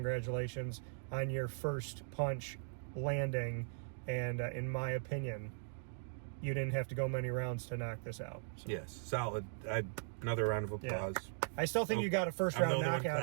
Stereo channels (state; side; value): silent; left; digital silence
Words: on your first punch landing, and in my opinion, you didn't have to go many rounds to knock this out. So. Yes, solid. Another round of applause. Yeah. I still think you got a first round